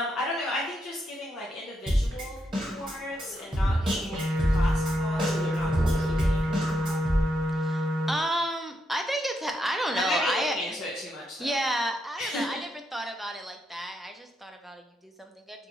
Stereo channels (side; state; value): both; normal; correlation 0.81